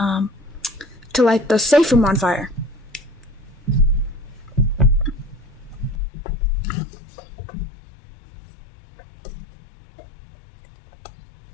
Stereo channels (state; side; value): drops out; right; at 6.0 s